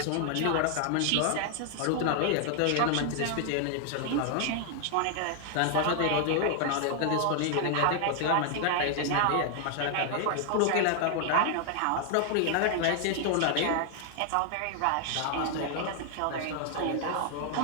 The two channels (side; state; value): both; different; correlation 0.00